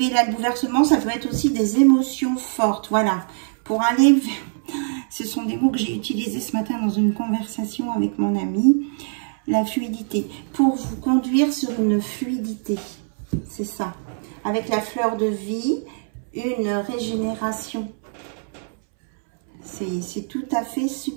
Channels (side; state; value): left; silent; 63 dB below the other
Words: là le bouleversement, ça peut être aussi des émotions fortes. Voilà, pour aller vers... Ce sont des mots que j'ai utilisés ce matin dans une conversation avec mon ami. La fluidité. Pour vous conduire sur une fluidité. C'est ça. Avec la fleur de vie, une régénération. C'est tout à fait